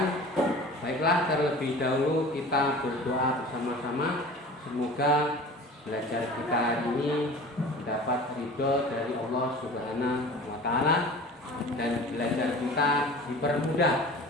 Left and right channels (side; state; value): both; normal; correlation 0.40